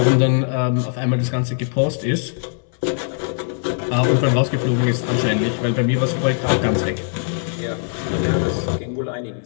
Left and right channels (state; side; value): silent; right; 62 dB below the other